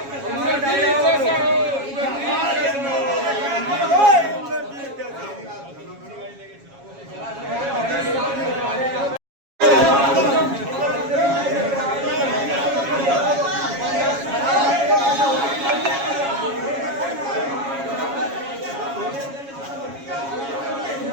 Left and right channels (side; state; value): left; late; 7.3 ms